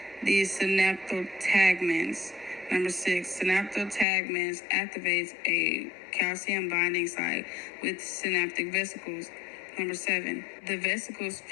the synaptotagments. Number 6, synaptotagments activates a calcium binding site with synaptic vesicles. Number 7, the vesicles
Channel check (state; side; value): drops out; right; at 4.0 s